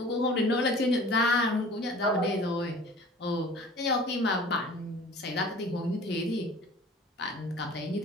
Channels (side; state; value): both; normal; correlation 0.44